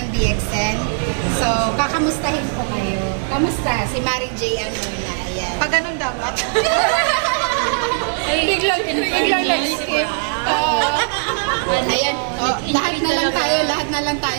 DXN. So, kakamustahin ko kayo. Kamusta? Si Maring Jayan muna. Ayan. Pag ganun dapat. Biglang nag-skip. Ayan. Lahat na lang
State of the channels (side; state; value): left; silent; 59 dB below the other